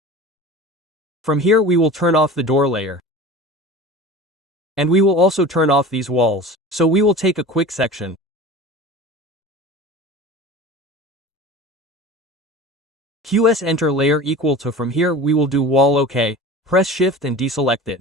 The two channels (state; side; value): normal; both; correlation 0.36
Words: From here we will turn off the door layer. And we will also turn off these walls. So we will take a quick section. QS enter layer equal to. From here we will do wall OK, press shift and deselect it.